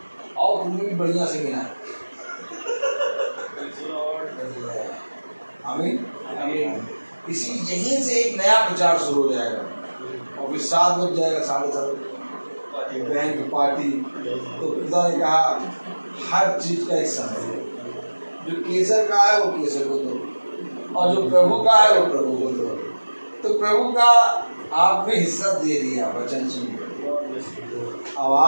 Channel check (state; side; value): inverted; both; correlation -1.00